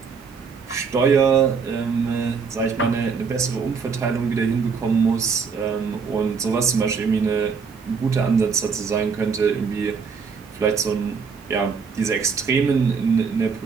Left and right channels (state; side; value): quieter; left; 5.6 dB